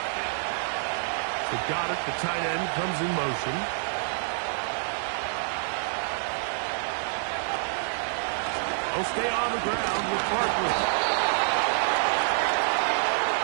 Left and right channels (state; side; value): silent; left; digital silence